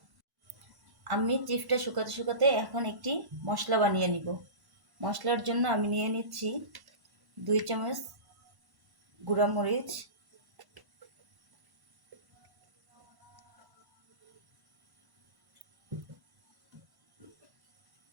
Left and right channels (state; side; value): late; left; 1.1 ms